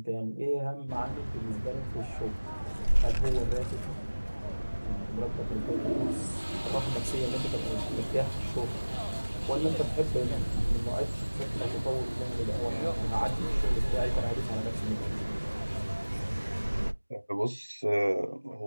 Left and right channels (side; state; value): both; inverted; correlation -1.00